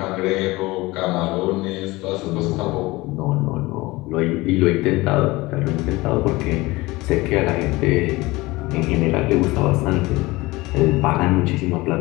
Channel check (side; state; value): right; quieter; 21.1 dB